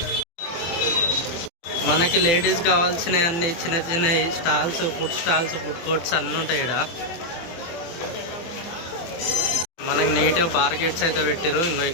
మనకి లేడీస్ కావాల్సిన అన్ని చిన్న చిన్న స్టాల్స్, ఫుడ్ కోర్ట్స్ అన్నీ ఉంటాయి ఇక్కడ. మనకి నీట్గా బార్గేట్స్ అయితే పెట్టారు. ఇంకో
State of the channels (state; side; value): late; right; 23 ms